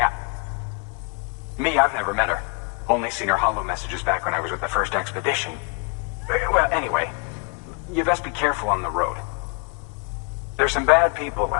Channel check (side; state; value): right; quieter; 36.5 dB